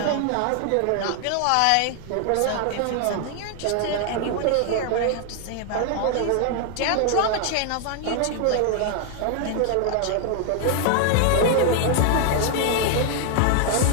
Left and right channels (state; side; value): different; both; correlation 0.00